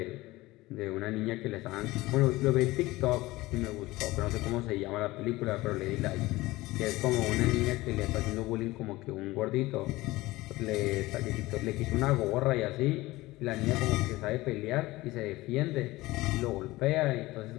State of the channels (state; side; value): quieter; right; 19.3 dB